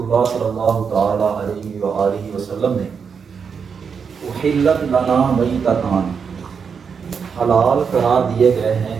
صلی اللہ تعالیٰ علیہ وآلہ وسلم نے احلت لنا میتتان، حلال قرار دیے گئے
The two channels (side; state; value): left; quieter; 6.3 dB